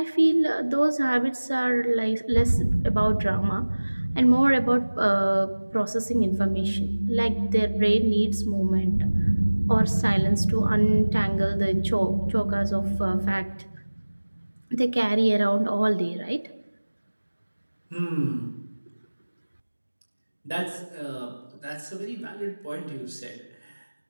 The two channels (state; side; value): inverted; both; correlation -1.00